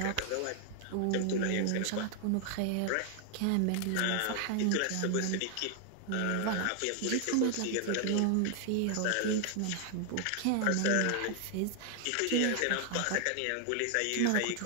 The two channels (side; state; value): both; different; correlation 0.00